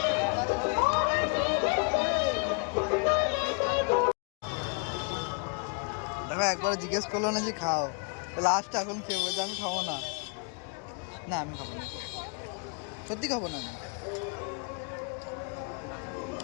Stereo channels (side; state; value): right; quieter; 38.6 dB